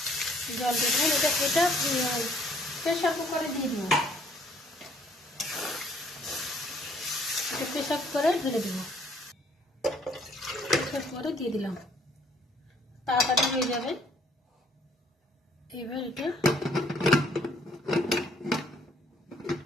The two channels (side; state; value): both; normal; correlation 0.63